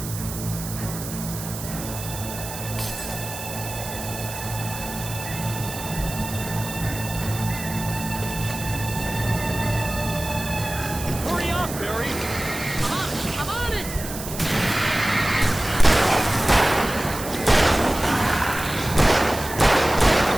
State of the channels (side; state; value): right; noise; hiss, 10 dB below the sound